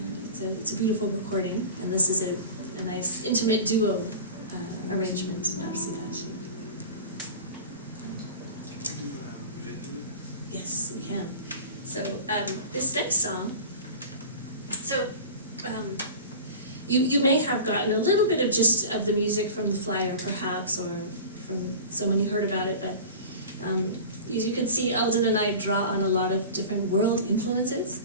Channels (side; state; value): both; inverted; correlation -0.35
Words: And it's a beautiful recording, and this is a nice intimate duo arrangement of Cidade. Can you do Vindaloo? Yes, we can. So this next song, you may have gotten a little bit of gist of the music from the flyer, perhaps, or from someone you heard about it, but as you can see, Elden and I draw on a lot of different world influences.